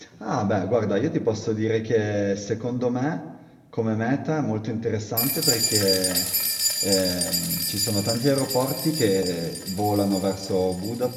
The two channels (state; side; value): identical; both; correlation 1.00